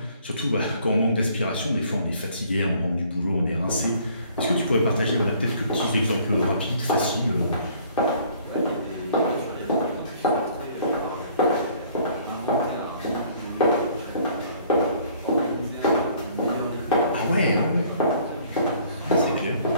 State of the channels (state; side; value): inverted; both; correlation -0.57